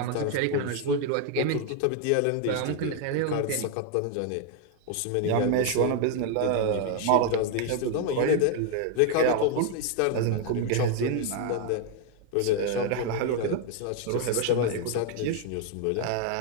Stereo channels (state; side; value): different; both; correlation 0.01